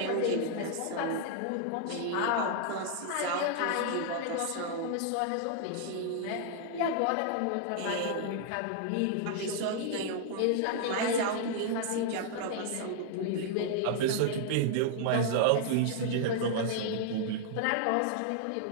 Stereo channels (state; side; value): different; both; correlation -0.01